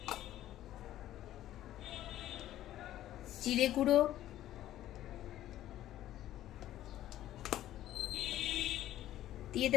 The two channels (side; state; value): right; quieter; 13.2 dB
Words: জিরে গুঁড়ো, দিয়ে